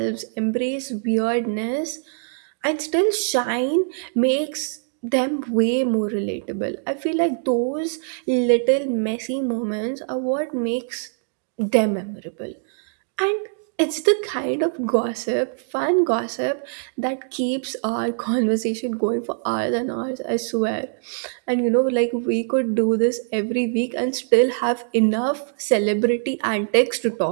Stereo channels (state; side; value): silent; left; digital silence